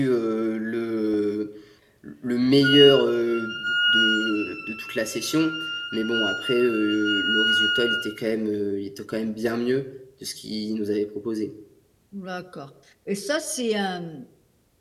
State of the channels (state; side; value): identical; both; correlation 1.00